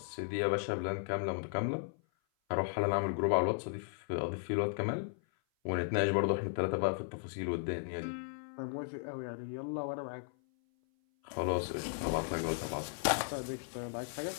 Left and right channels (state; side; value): silent; right; 54 dB below the other